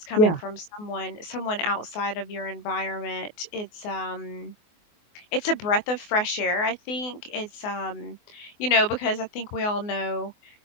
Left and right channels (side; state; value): right; late; 24 ms